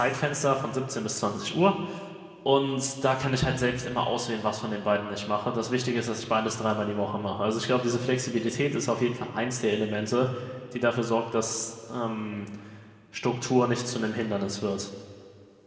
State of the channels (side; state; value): both; identical; correlation 1.00